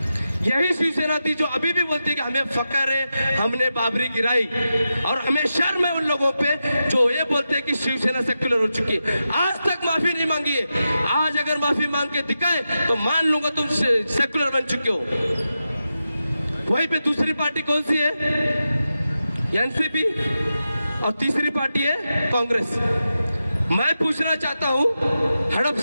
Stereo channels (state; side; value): inverted; both; correlation -0.90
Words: यही शिवसेना थी जो अभी भी बोलती है कि हमें फकर है, हमने बाबरी गिराई, और हमें शर्म है उन लोगों पे जो ये बोलते हैं कि शिवसेना सेक्युलर हो चुकी है। आज तक माफी नहीं मांगी है। आज अगर माफी मांग के दिखाए तो मान लूंगा तुम सेक्युलर बन चुके हो। वहीं पे दूसरी पार्टी कौन सी है? एनसीपी, और तीसरी पार्टी है कांग्रेस। मैं पूछना चाहता हूं,